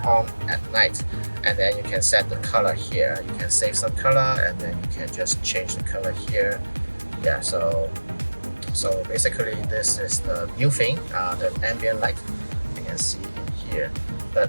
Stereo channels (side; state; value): both; inverted; correlation -1.00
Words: at night, and then you can set the color here. You can save some color, and then you can just change the color here. Yeah, so basically this is the new thing, the ambient light you can see in here. But